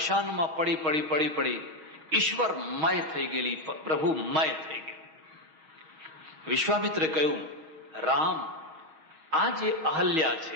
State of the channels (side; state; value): left; late; 6.3 ms